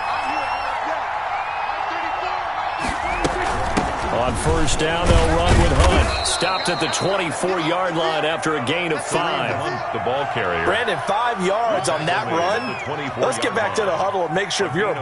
On 1st down, they'll run with Hunt. Stopped at the 24-yard line after a gain of 5. The ball carrier. Brandon, 5 yards on that run. Let's get back to the huddle and make sure if you're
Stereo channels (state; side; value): identical; both; correlation 1.00